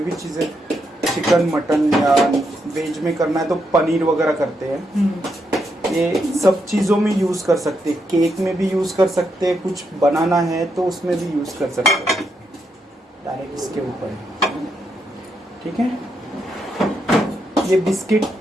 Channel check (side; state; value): both; normal; correlation 0.80